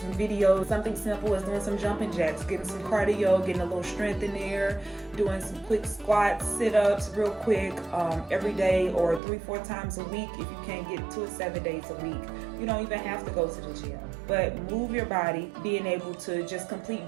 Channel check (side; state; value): left; drops out; at 9.2 s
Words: videos, something simple as doing some jumping jacks, getting some cardio, getting a little strength in there, doing some quick squats, sit-ups real quick every day, or 3-4 times a week. If you can't get to it 7 days a week, you don't even have to go to the gym, but move your body, being able to just complete